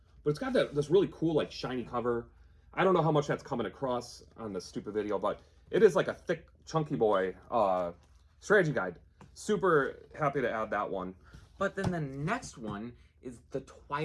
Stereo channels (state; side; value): identical; both; correlation 1.00